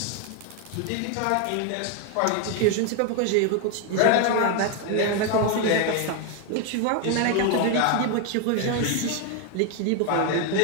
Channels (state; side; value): different; both; correlation 0.01